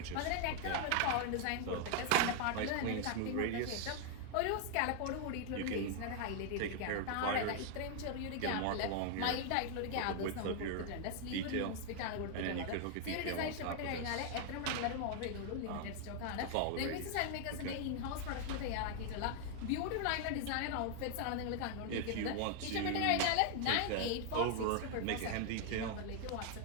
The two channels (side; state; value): both; different; correlation 0.00